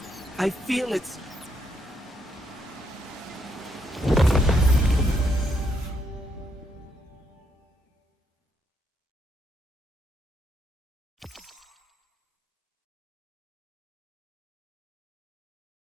I feel it's...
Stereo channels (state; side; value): normal; both; correlation 0.76